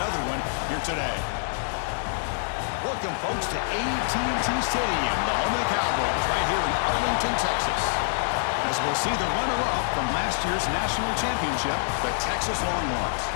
one here today. Welcome, folks, to AT&T Stadium, the home of the Cowboys, right here in Arlington, Texas. As we'll see the runner-up from last year's national championship, the Texas Longhorns,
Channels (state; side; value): silent; right; digital silence